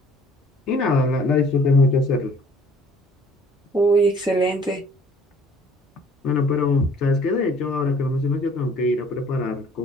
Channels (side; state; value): both; normal; correlation 0.56